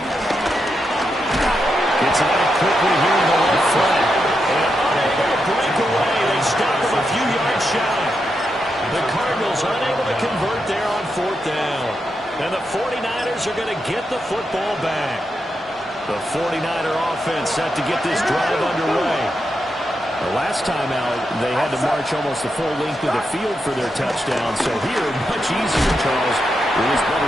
out quickly here in the left flank. And unable to break away. They stop him a few yards shy. The Cardinals unable to convert there on 4th down. And the 49ers are going to get the football back. The 49er offense set to get this drive underway. The last time out, they had to march almost the full length of the field for their touchdown. So here, much easier, Charles, with this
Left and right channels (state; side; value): normal; both; correlation 0.85